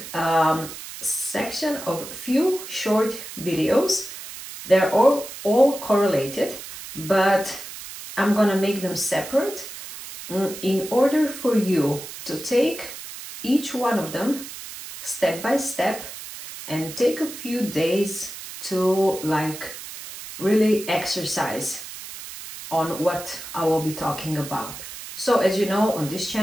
a section of few short videos. They're all correlated, but I'm gonna make them separate in order for you to take each one of them step by step and take a few days to really exercise on what I will be talking about. So as you know, on this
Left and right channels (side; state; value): right; noise; hiss, 12 dB below the sound